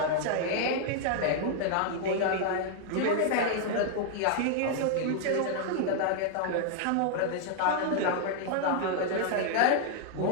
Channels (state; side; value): different; both; correlation -0.01